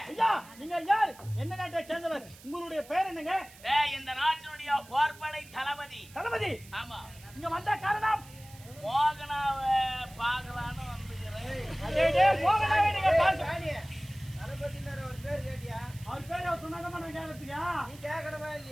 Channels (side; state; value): right; noise; hiss, 21 dB below the sound